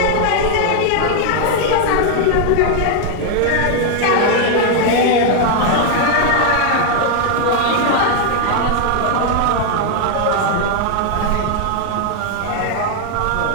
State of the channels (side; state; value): both; different; correlation 0.00